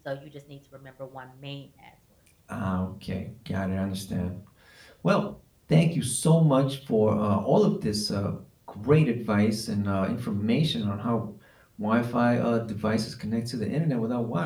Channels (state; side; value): identical; both; correlation 1.00